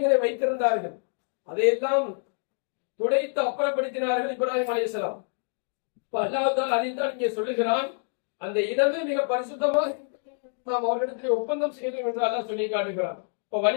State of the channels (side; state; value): right; silent; digital silence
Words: வைத்திருந்தார்கள். அதையெல்லாம் துடைத்து அப்புறப்படுத்தினார்கள் இப்ராஹிம் அலைஹிஸ்ஸலாம். அல்லாஹ் தஆலா அதைத்தான் இங்கே சொல்லுகிறான், அந்த இடமே மிக பரிசுத்தமாக நாம் அவர்களிடத்தில் ஒப்பந்தம் செய்தோம் என்று அல்லாஹ் சொல்லி காட்டுகிறான். இப்ப